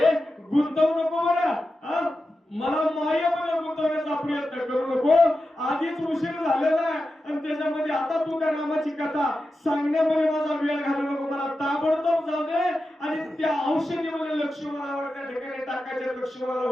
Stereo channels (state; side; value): normal; both; correlation 0.91